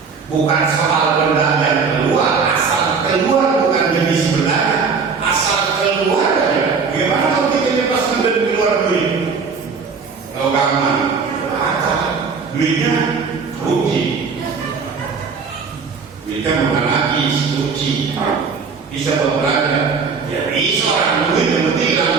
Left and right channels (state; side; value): quieter; left; 5.3 dB